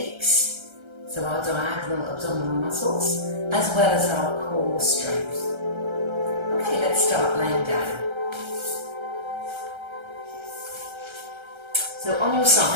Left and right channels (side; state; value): left; late; 1.3 ms